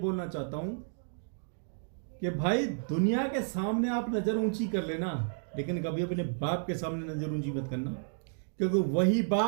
चाहता हूँ कि भाई दुनिया के सामने आप नज़र ऊंची कर लेना, लेकिन कभी अपने बाप के सामने नज़र ऊंची मत करना, क्योंकि वही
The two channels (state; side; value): silent; left; digital silence